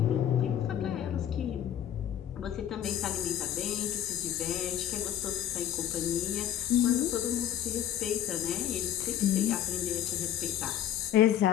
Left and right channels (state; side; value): quieter; right; 10.8 dB